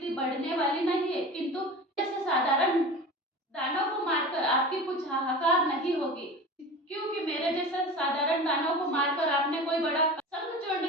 बढ़ने वाली नहीं है, किंतु जैसे साधारण दानव को मारकर आपकी कुछ हाहाकार नहीं होगी, क्योंकि मेरे जैसे साधारण दानव को मारकर आपने कोई बड़ा।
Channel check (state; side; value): normal; both; correlation 0.33